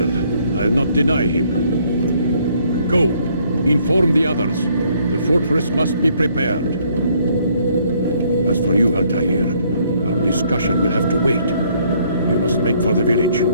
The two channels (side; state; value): both; inverted; correlation -0.66